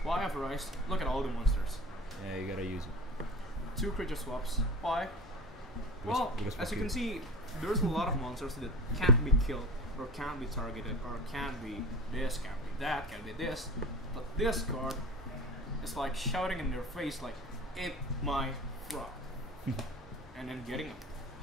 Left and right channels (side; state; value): both; normal; correlation 0.33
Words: Why Avarice? Look at all the monsters. Yeah, you gotta use it. 2 creature swaps. Why? Well, as you can see, there's a lot of monsters that can't be killed, or can't be targeted, or can't be this, can't be that, can't be this. But this card is like shouting in their face like, "Eat my frog." And then getting a